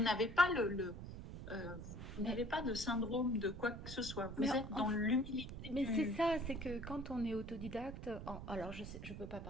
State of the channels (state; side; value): noise; right; rumble, 9 dB below the sound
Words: n'avez pas vous Mais, n'avez pas de syndrome de quoi que ce soit. mais Vous êtes dans l'humilité Mais c'est du. ça, c'est que quand on est autodidacte, alors je peux pas